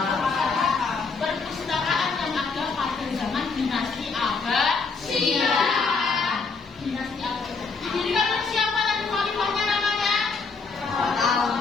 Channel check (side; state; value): right; quieter; 4.6 dB